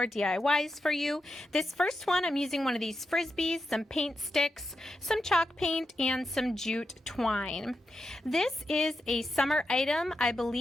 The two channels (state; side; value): normal; both; correlation 0.87